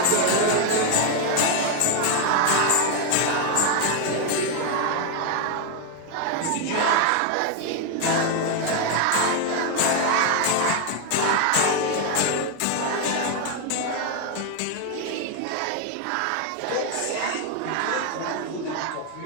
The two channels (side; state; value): both; different; correlation 0.00